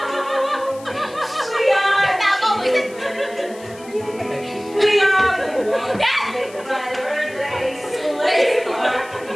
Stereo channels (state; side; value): noise; left; hiss, 22 dB below the sound